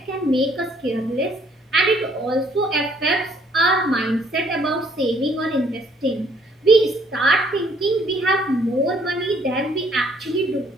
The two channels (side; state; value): both; normal; correlation 0.64